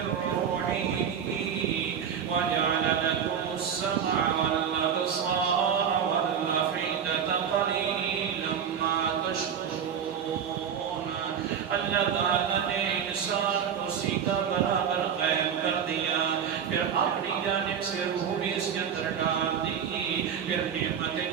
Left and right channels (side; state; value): left; quieter; 7.9 dB